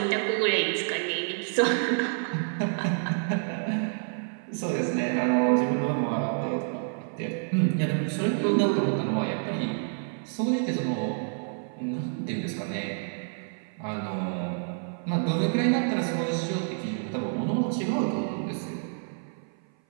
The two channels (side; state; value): left; silent; 56 dB below the other